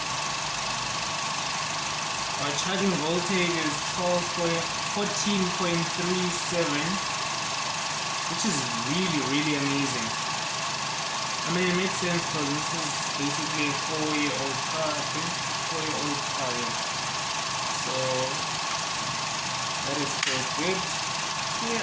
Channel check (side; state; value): both; identical; correlation 1.00